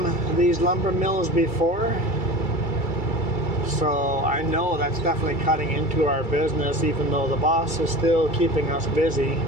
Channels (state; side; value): late; right; 2.3 ms